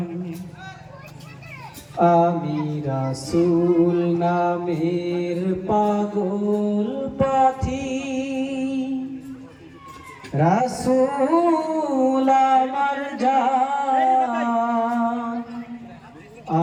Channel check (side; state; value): both; identical; correlation 1.00